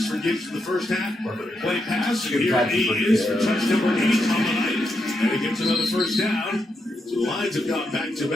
for Gibbs in the first half. Play pass, and here he is for touch number 8 on the night. And he gets another 1st down. So the Lions have gone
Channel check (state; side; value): normal; both; correlation 0.83